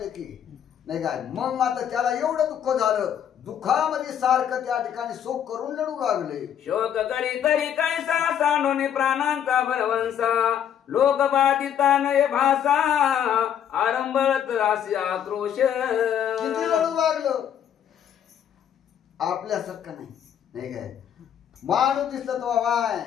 की नाही काय। मग आता त्याला एवढं दुःख झालं दुःखामध्ये सारखं त्या ठिकाणी शोक करून लढू लागले। शोक करी तरी कैसा सांडून प्राणांचा भरवंसा लोक बाधिता नये भाषा आरंभत राशी आक्रोश। किती लढू लागलं आपल्यासारखं नाही काय। माणूस दिसलं तो वाय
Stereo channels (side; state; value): right; quieter; 9.3 dB